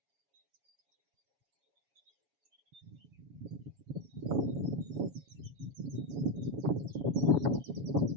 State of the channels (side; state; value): left; late; 7.2 ms